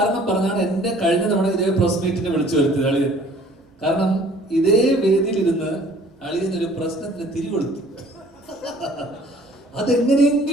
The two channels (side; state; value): both; normal; correlation 0.54